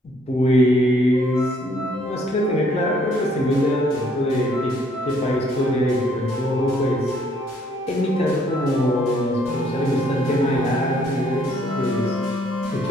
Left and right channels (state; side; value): normal; both; correlation 0.65